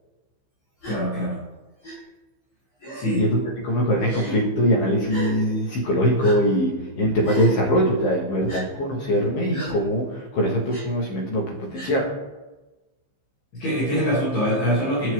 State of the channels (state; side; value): late; right; 15 ms